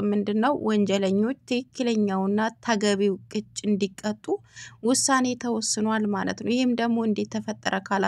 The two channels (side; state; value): both; identical; correlation 1.00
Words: ምንድነው? ወንጀለኞች ትክክለኛውና ተገቢው ቅጭ እንዲቀጡ ውሳኔ ተወስኗል ማለት ነው። ይሄም ደግሞ እንዴት ተፈጠረ